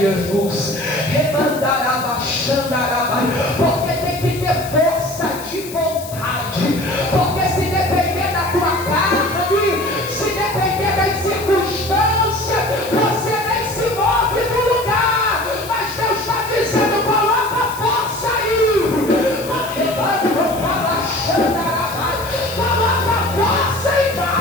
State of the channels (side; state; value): left; noise; hiss, 14 dB below the sound